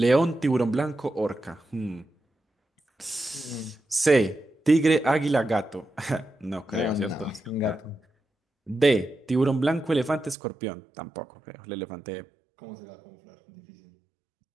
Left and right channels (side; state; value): left; drops out; at 10.4 s